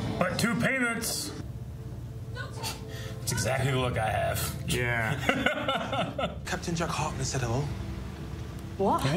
But 2 payments. It's exactly the look I have. Yeah. Captain Jack Hartman said hello. What?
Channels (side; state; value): both; identical; correlation 1.00